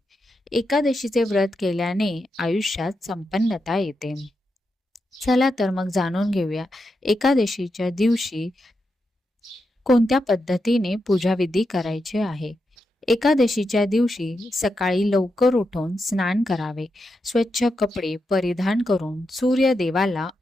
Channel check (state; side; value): normal; both; correlation 0.86